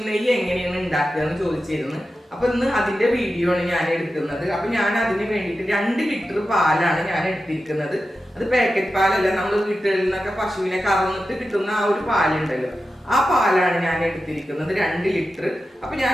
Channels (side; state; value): both; normal; correlation 0.92